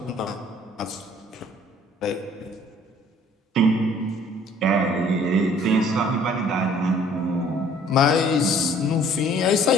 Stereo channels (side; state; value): both; normal; correlation 0.56